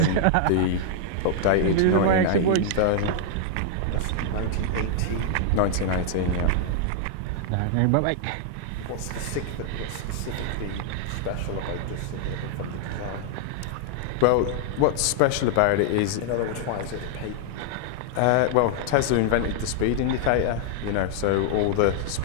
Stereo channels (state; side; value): different; both; correlation -0.01